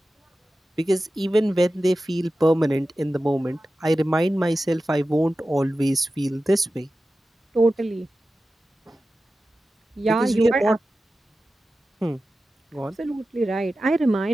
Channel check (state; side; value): normal; both; correlation 0.94